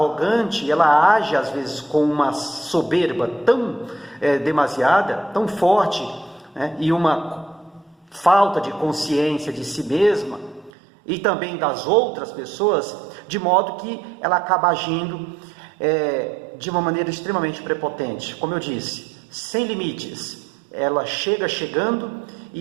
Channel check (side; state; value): left; drops out; at 10.7 s